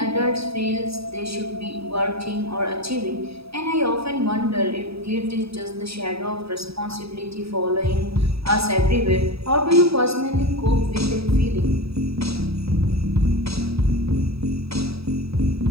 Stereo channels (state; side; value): late; left; 0.77 ms